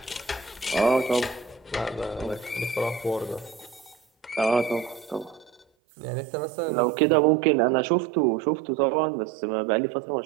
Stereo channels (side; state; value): left; drops out; at 5.7 s